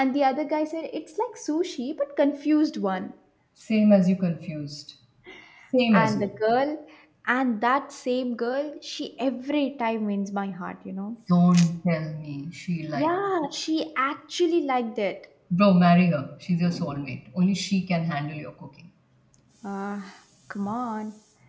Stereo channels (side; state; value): both; identical; correlation 1.00